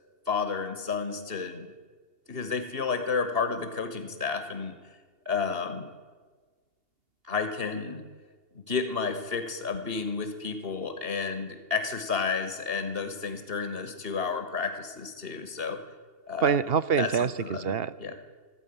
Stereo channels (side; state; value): left; late; 2.8 ms